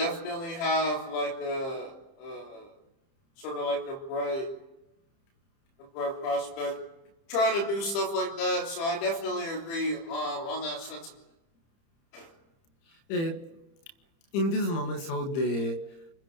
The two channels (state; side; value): late; right; 30 ms